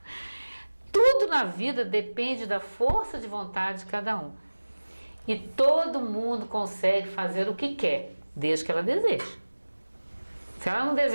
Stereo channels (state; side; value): inverted; both; correlation -1.00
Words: Tudo na vida depende da força de vontade de cada um. E todo mundo consegue fazer o que quer, desde que ela deseje. Se ela não